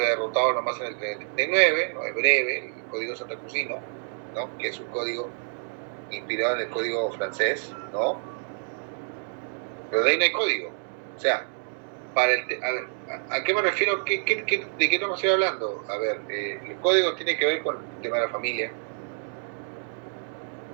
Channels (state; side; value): silent; left; 60 dB below the other